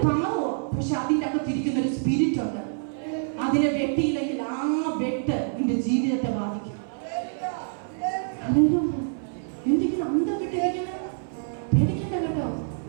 പാവോ, പക്ഷെ അതിൻ്റെ അകത്തിരിക്കുന്ന ഒരു സ്പിരിറ്റ് ഉണ്ട്. അതിനെ വെട്ടിയില്ലെങ്കിൽ ആ വെട്ട് നിന്റെ ജീവിതത്തെ ബാധിക്കും. എന്തെങ്കിലും അന്തം വിട്ടിരിക്കുന്നത് പേടിക്കേണ്ട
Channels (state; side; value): silent; left; 58 dB below the other